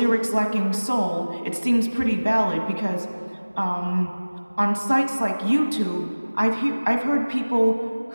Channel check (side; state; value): both; inverted; correlation -1.00